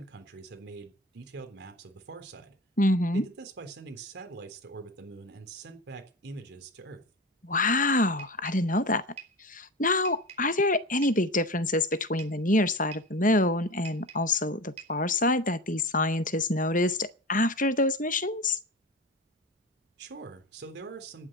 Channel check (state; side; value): normal; both; correlation 0.29